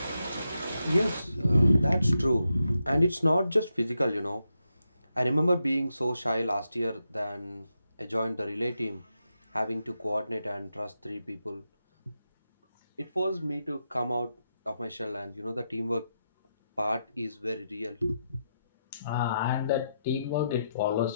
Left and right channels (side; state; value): both; inverted; correlation -0.85